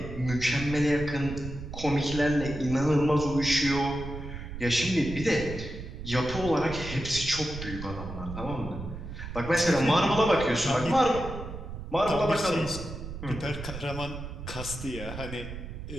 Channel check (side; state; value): right; noise; rumble, 9 dB below the sound